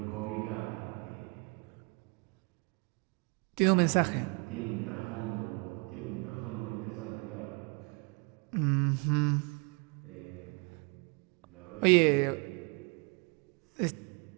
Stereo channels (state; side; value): quieter; left; 32.3 dB